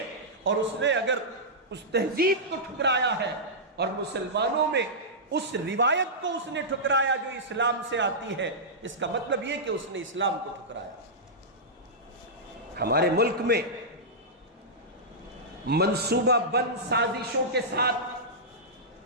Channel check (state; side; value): normal; both; correlation -0.13